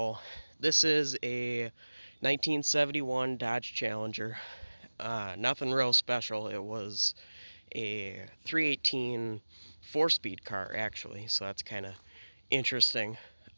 this is a 1971 Dodge Challenger. Nothing real special. It was a 318 4-speed car, actually, so that's kind of interesting.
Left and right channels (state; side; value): inverted; both; correlation -1.00